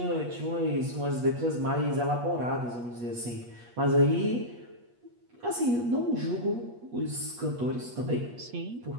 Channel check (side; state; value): left; late; 8.4 ms